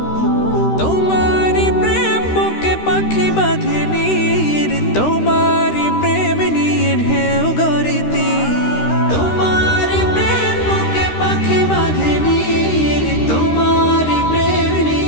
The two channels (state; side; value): late; right; 13 ms